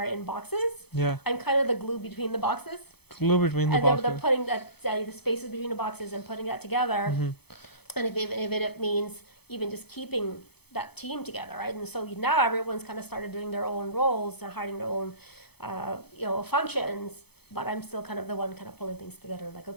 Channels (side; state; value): right; late; 0.98 ms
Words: in boxes. Yeah. I'm kind of the glue between the boxes. Glue between the And boxes. they're putting the spaces between the boxes and putting that together. And if it means even just keeping that team together, right? And so now everyone's kind of started doing their own roles and hiding their own, functions. But I'm still kind of the one kind of pulling things together. Like,